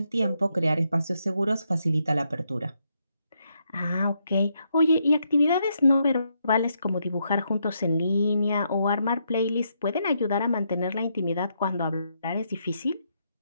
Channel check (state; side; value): inverted; both; correlation -0.78